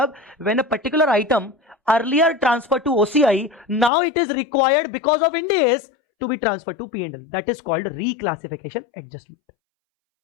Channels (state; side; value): drops out; right; at 3.9 s